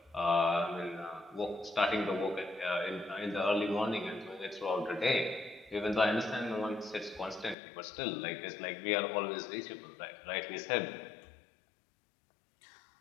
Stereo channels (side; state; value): right; drops out; at 7.6 s